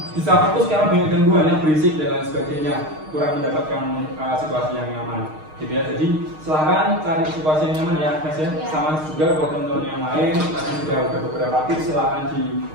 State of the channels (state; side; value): late; left; 6.5 ms